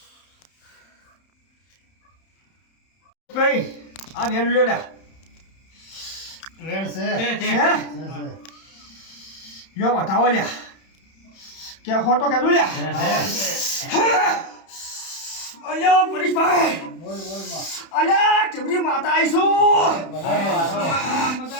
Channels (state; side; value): late; right; 31 ms